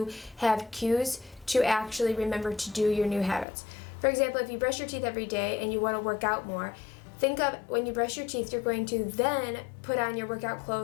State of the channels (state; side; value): drops out; right; at 3.5 s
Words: have cues to actually remember to do your new habits. For example, if you brush your teeth every day and you want to work out more, think of when you brush your teeth, you're going to then put on your workout